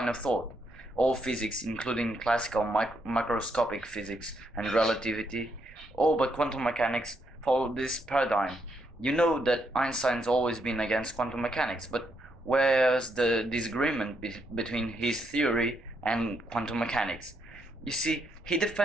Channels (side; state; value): both; normal; correlation 0.77